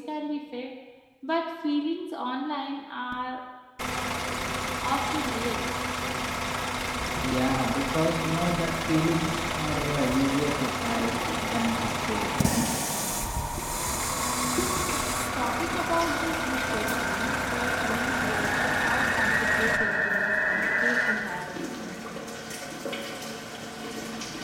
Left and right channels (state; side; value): identical; both; correlation 1.00